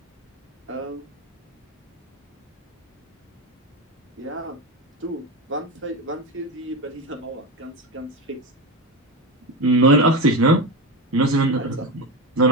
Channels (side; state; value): both; normal; correlation 0.18